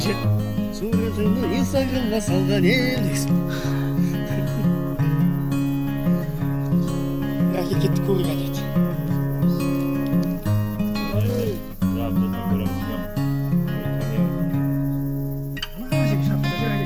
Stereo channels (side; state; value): both; identical; correlation 1.00